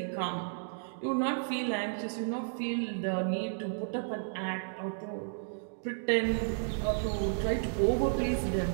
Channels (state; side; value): silent; left; digital silence